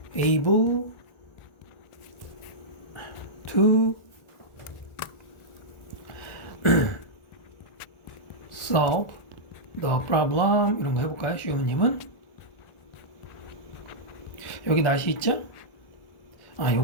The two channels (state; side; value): late; right; 1.4 ms